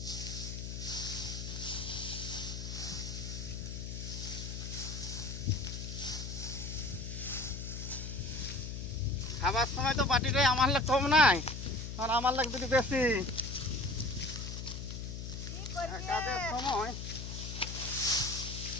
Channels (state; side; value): noise; left; hum, 6 dB below the sound